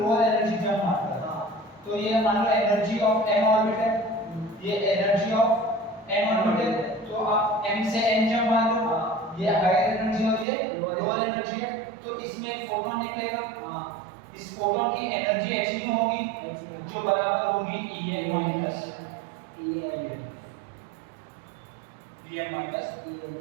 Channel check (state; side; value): drops out; left; at 10.5 s